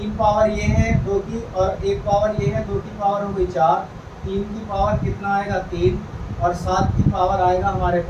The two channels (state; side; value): identical; both; correlation 1.00